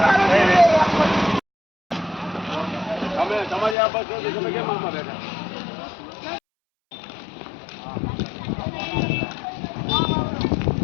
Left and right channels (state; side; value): drops out; right; at 3.8 s